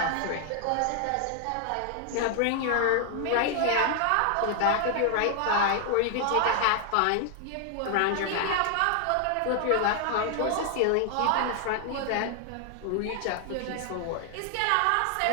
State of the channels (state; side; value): different; both; correlation 0.00